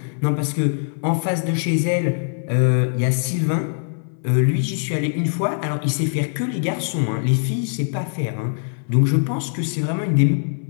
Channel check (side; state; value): right; silent; 64 dB below the other